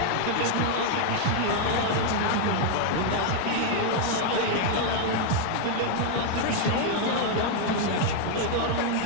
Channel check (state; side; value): different; both; correlation 0.00